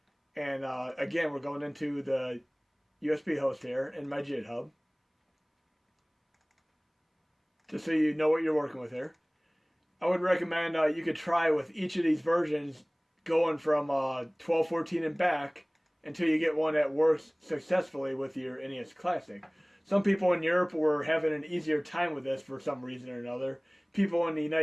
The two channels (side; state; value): both; identical; correlation 1.00